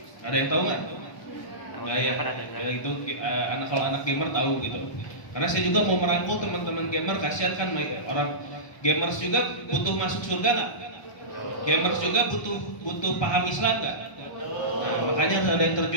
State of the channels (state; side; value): late; right; 1.2 ms